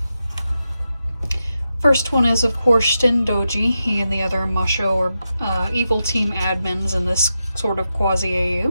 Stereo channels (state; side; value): inverted; both; correlation -0.89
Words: First one is, of course, Shin Doji. He and the other Masho or evil team admins in this sort of